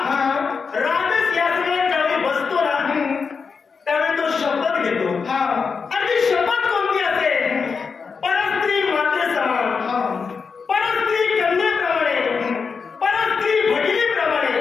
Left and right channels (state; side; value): quieter; right; 5.4 dB